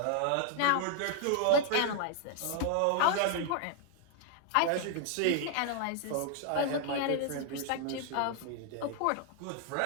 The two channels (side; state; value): both; different; correlation 0.00